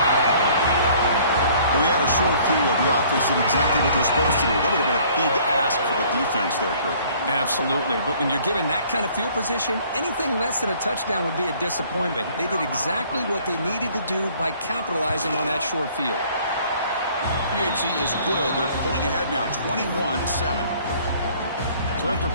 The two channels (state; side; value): inverted; both; correlation -0.56